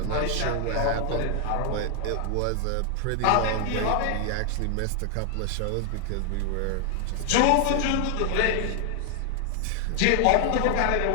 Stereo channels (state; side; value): different; both; correlation 0.00